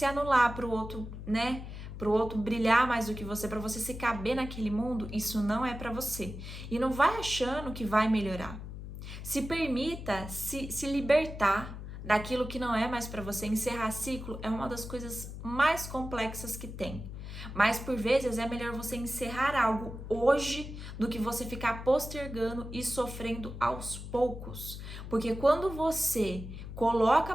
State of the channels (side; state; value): left; noise; hum, 10 dB below the sound